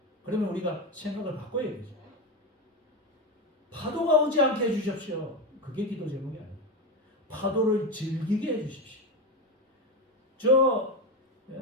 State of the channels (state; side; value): normal; both; correlation 0.15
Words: 그러면 우리가 생각을 바꿔야 되죠. 파도가 오지 않게 해주십시오. 그게 기도 제목이 아니에요. 파도를 즐기게 해주십시오.